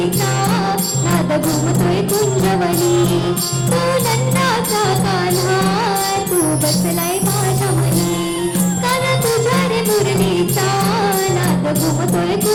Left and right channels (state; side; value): identical; both; correlation 1.00